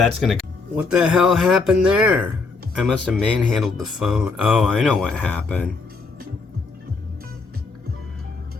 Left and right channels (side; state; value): right; quieter; 4.2 dB